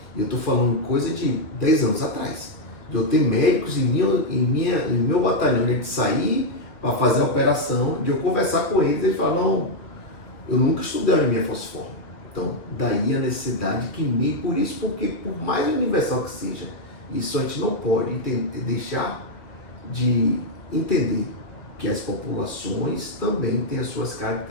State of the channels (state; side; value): late; right; 2.0 ms